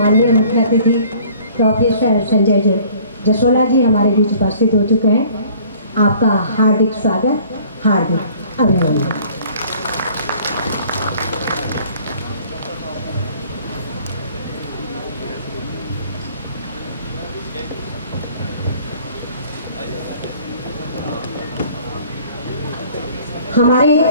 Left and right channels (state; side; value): inverted; both; correlation -0.53